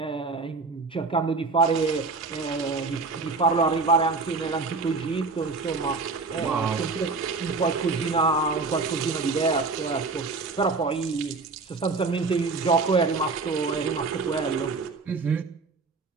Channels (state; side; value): quieter; left; 4.1 dB